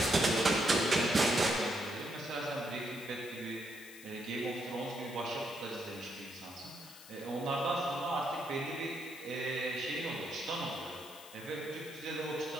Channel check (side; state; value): left; noise; hiss, 17 dB below the sound